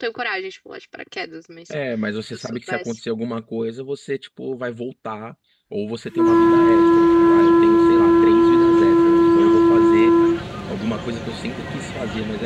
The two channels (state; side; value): identical; both; correlation 1.00